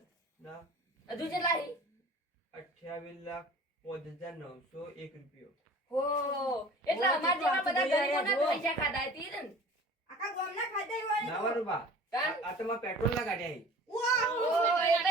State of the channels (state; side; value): normal; both; correlation 0.43